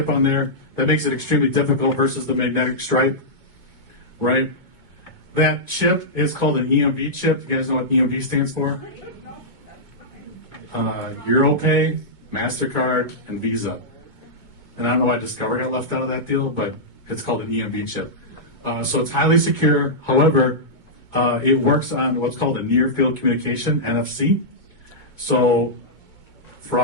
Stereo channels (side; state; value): left; late; 2.2 ms